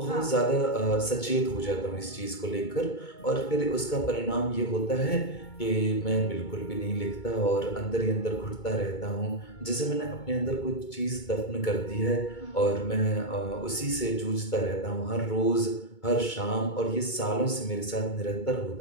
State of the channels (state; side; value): late; right; 2.2 ms